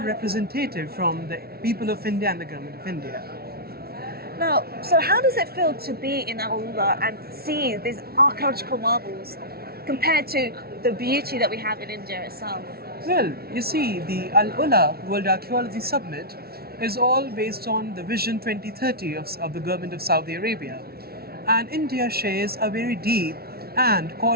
representative from the people of India and the government of India. Now, so how does it feel to be in AlUla and see these archaeological marvels compared to the beauty that we have in India itself? Well, you see, the AlUla World Archaeology Summit is all based on the Vision 2030 of the government of Saudi Arabia. And India shares a very deep and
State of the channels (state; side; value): late; left; 0.45 ms